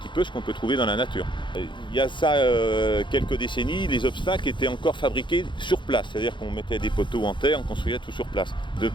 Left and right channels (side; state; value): right; late; 0.23 ms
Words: peu ce qu'on peut trouver dans la nature. Il y a ça quelques décennies, les obstacles étaient encore fabriqués sur place, c'est-à-dire qu'on mettait des poteaux en terre, on construisait tout sur place.